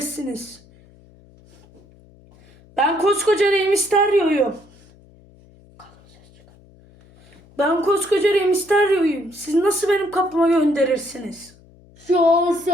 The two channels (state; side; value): noise; left; hum, 27 dB below the sound